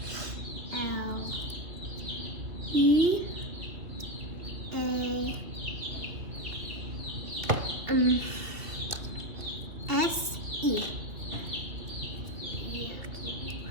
L E A S E.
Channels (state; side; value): late; left; 2.6 ms